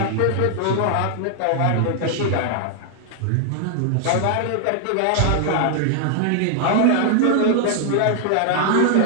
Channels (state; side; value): different; both; correlation 0.00